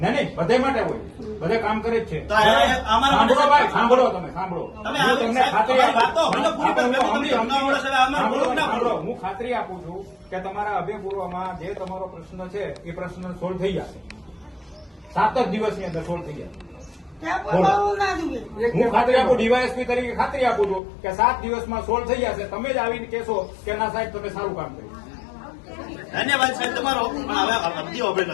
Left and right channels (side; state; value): right; drops out; at 20.8 s